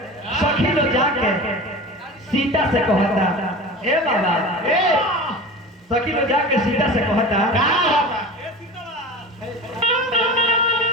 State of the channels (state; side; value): normal; both; correlation 0.33